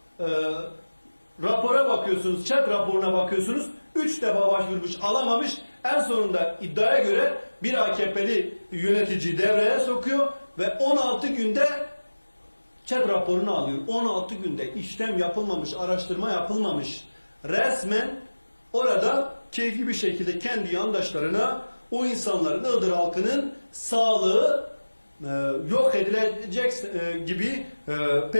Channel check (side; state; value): both; inverted; correlation -1.00